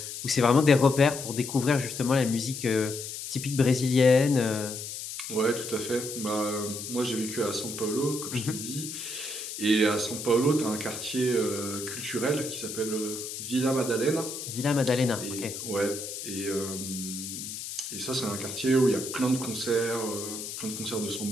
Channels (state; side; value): noise; left; hiss, 8 dB below the sound